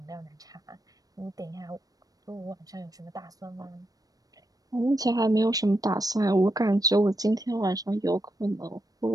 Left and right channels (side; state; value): left; late; 0.18 ms